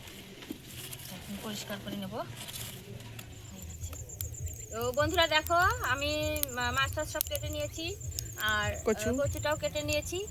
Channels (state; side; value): identical; both; correlation 1.00